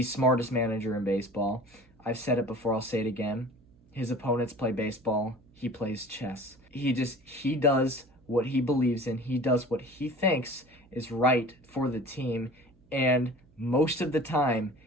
smartest manager in baseball. I've said it before, I'll say it again. His opponents play baseball. He plays chess. He does what he believes in. He does what he thinks is right for the team. And most of the time,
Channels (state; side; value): noise; right; hum, 30 dB below the sound